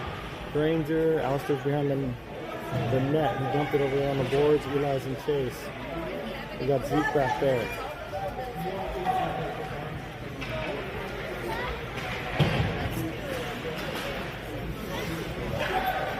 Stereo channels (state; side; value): identical; both; correlation 1.00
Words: Granger. Alistair's behind the net. He dumped it over there on the boards. Eli's and Chase. We got Zeke back there.